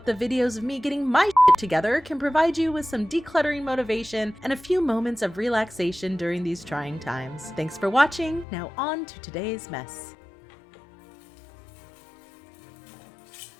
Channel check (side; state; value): right; drops out; at 8.5 s